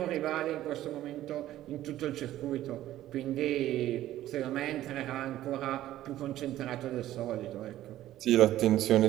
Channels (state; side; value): quieter; left; 13.8 dB